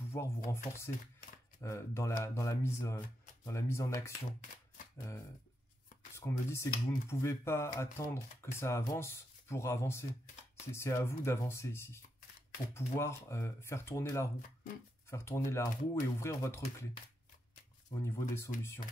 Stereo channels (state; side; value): normal; both; correlation 0.84